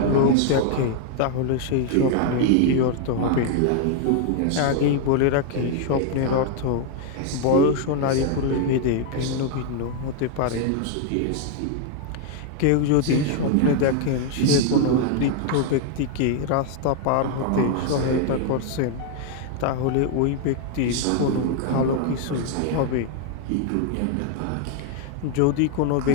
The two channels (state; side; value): different; both; correlation 0.00